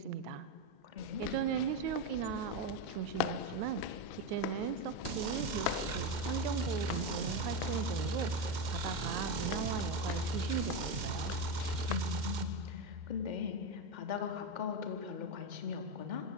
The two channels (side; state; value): left; late; 2.1 ms